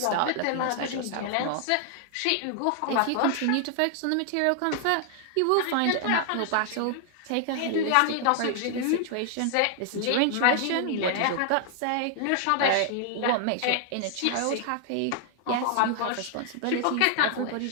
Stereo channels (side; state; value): both; different; correlation 0.00